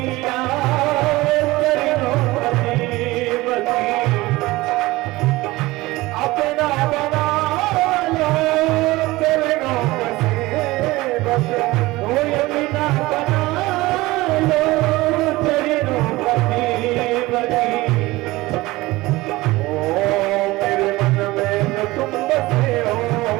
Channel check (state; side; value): quieter; left; 19.9 dB